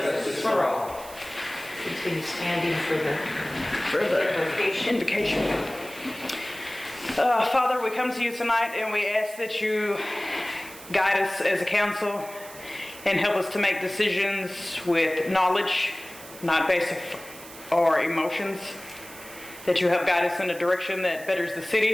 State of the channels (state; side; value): noise; right; hiss, 17 dB below the sound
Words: for all. Continue standing for the Invocation. Father, we come to you tonight and we ask that you guide us as a council and help us to make decisions with knowledge, not based on our emotions. That you help guide us in a direction that betters the